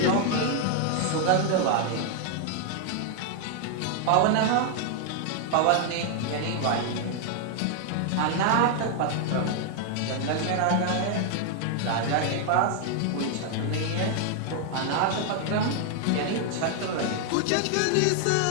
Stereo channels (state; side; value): different; both; correlation 0.00